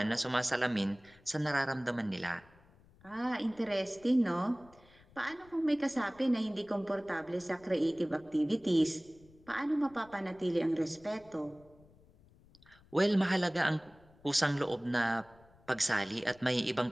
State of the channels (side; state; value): left; noise; rumble, 27 dB below the sound